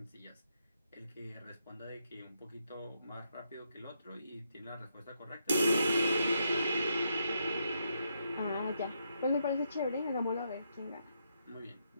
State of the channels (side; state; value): both; inverted; correlation -0.78